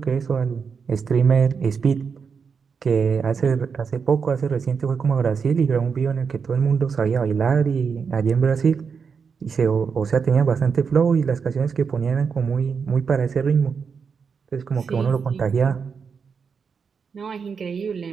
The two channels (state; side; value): quieter; left; 5.9 dB